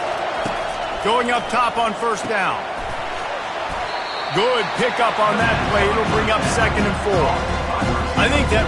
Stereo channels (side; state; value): both; identical; correlation 1.00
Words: Going up top on 1st down. Good pickup on that play. It'll bring up 2nd and 4. I think